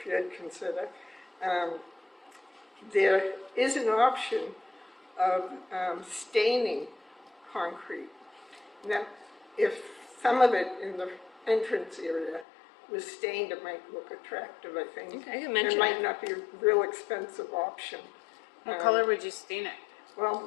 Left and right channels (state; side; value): drops out; right; at 12.5 s